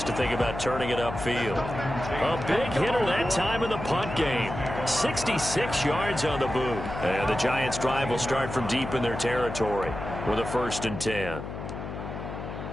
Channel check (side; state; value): left; noise; hum, 8 dB below the sound